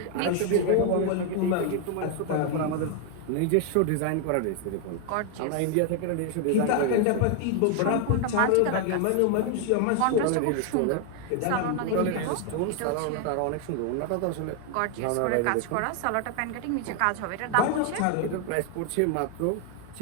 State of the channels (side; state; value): both; different; correlation 0.00